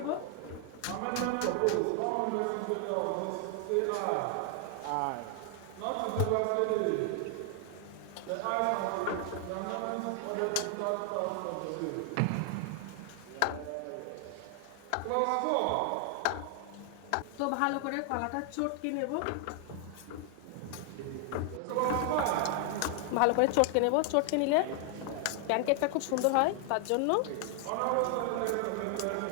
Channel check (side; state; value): both; different; correlation 0.00